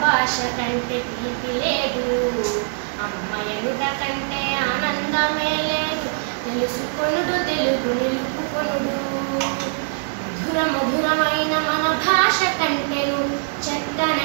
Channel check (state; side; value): silent; left; digital silence